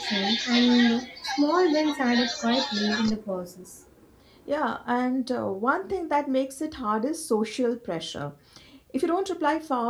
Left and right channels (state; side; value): identical; both; correlation 1.00